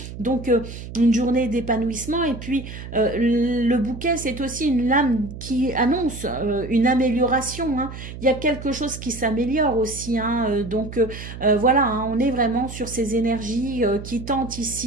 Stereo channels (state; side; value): noise; right; hum, 11 dB below the sound